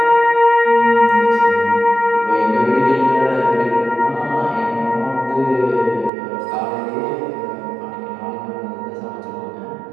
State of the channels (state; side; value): drops out; left; at 6.1 s